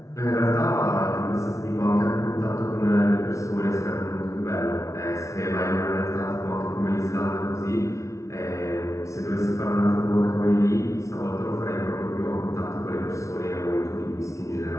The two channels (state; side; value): late; right; 0.14 ms